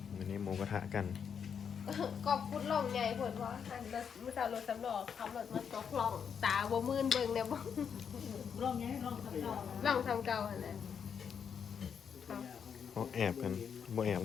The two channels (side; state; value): right; quieter; 7.2 dB